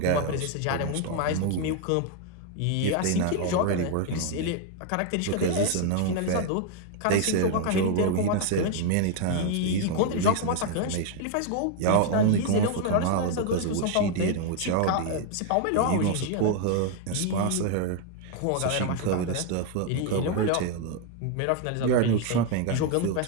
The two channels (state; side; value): different; both; correlation 0.00